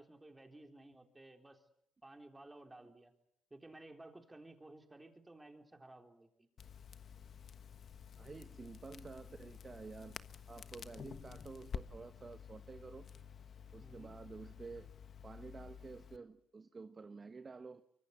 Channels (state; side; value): normal; both; correlation 0.81